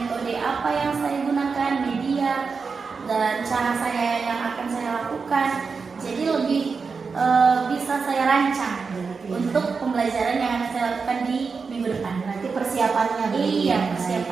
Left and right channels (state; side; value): quieter; left; 5.0 dB